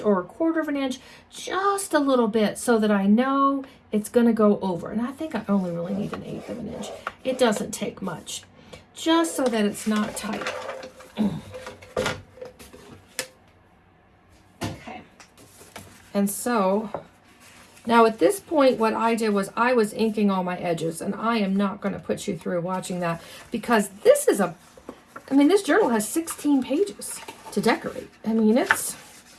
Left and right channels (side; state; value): both; identical; correlation 1.00